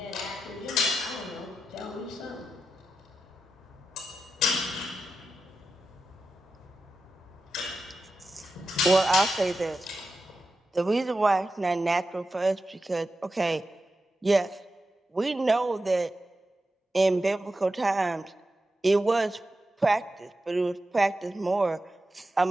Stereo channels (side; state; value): both; normal; correlation 0.91